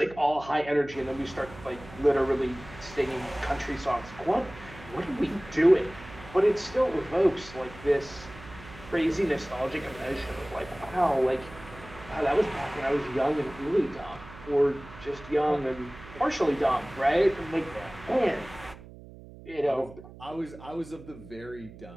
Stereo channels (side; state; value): right; noise; hum, 17 dB below the sound